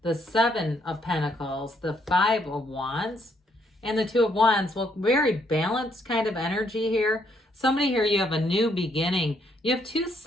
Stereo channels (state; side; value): normal; both; correlation 0.72